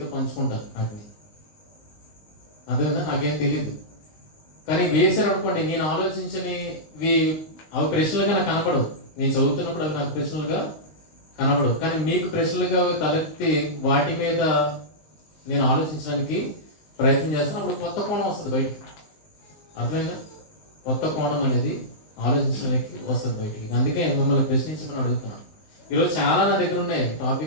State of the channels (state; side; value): late; right; 19 ms